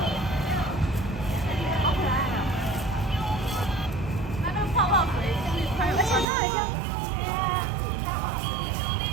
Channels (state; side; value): drops out; left; at 6.2 s